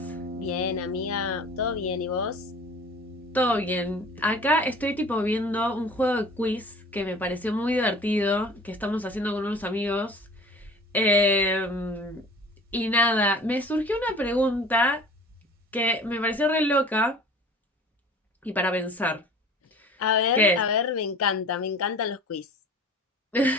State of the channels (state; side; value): normal; both; correlation 0.44